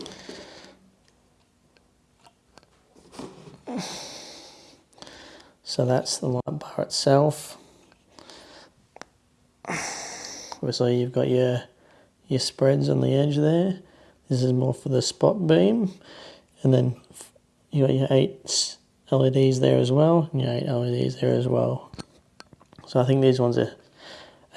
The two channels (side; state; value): both; identical; correlation 1.00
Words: So that's the light bar itself. Obviously you've got your spreads on the edge there. This is more for the spot beam, and then you got your 8 LEDs there as well, and your 8 LEDs there as well. So I think these ones are